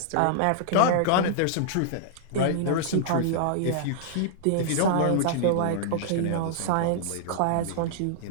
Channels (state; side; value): different; both; correlation -0.01